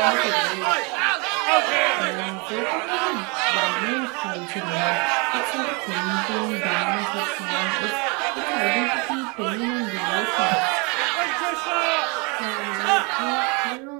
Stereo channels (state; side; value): quieter; left; 30.9 dB